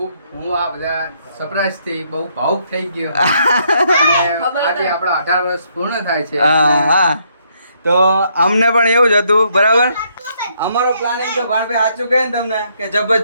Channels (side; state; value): both; inverted; correlation -0.72